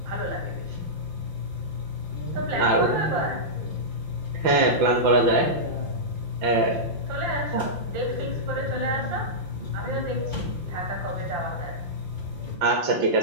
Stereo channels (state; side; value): late; left; 5.7 ms